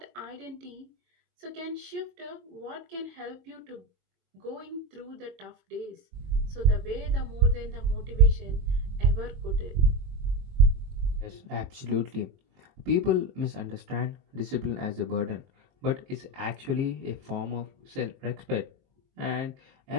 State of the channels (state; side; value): late; left; 23 ms